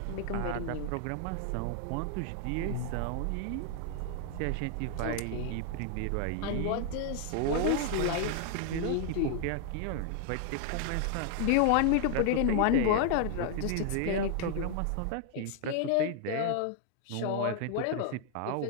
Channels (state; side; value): different; both; correlation 0.00